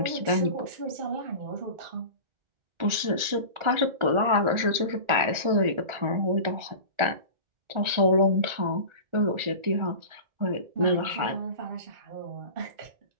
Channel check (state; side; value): late; left; 1.4 ms